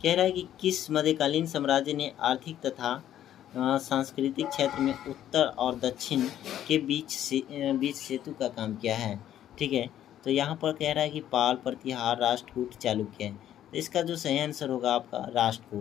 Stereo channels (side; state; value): right; quieter; 11.4 dB